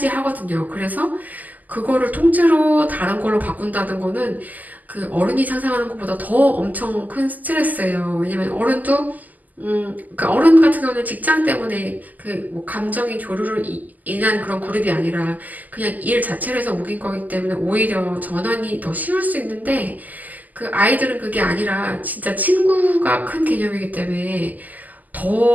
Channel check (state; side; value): late; left; 0.081 ms